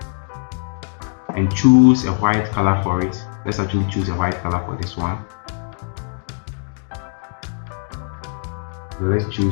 and choose a white color for it. Let's actually choose a white color for this one. So let's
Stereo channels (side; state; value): right; silent; 65 dB below the other